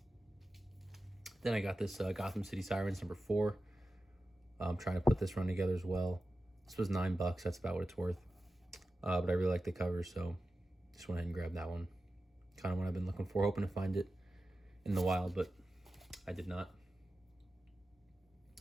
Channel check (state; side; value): normal; both; correlation 0.93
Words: Then I got this Gotham City Sirens number 4. I'm trying to put this run together as well. This was $9. That's about what it's worth. But I really like the cover, so just went ahead and grabbed that one. Kind of what I've been looking for, hoping to find it in the wild, but I did not.